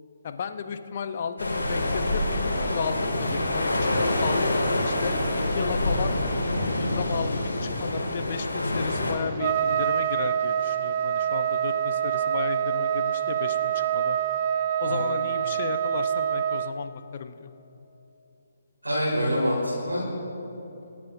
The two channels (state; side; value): inverted; both; correlation -0.71